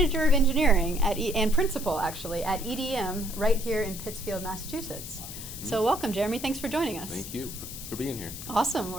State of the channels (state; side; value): noise; left; hiss, 10 dB below the sound